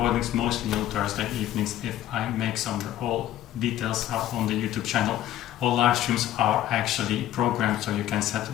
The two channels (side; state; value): right; quieter; 12.8 dB